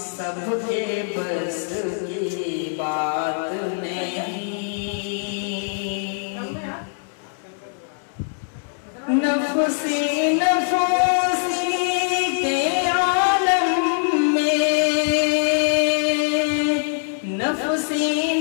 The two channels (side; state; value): right; silent; digital silence